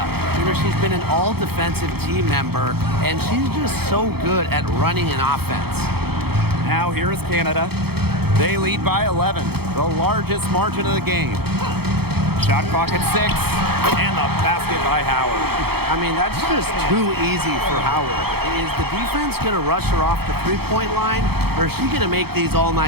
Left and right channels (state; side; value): late; left; 0.96 ms